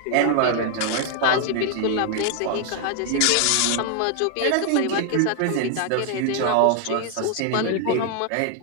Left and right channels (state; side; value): different; both; correlation 0.00